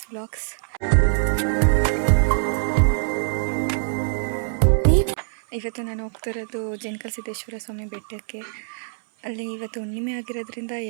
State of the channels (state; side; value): silent; left; 63 dB below the other